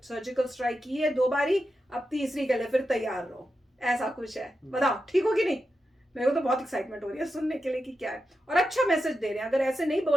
स्ट्राइक की है 2 बारी, अब तीसरी के लिए फिर तैयार रहो, ऐसा कुछ है। बताओ ठीक हो कि नहीं? मेरे को तो बहुत एक्साइटमेंट हो रही है सुनने के लिए कि क्या है, और अच्छा मैसेज दे रहे हैं। अगर ऐसे नहीं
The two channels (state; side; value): normal; both; correlation 0.89